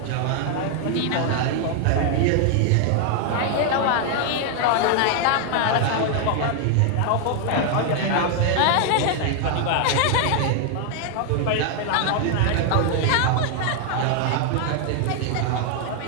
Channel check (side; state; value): both; different; correlation 0.00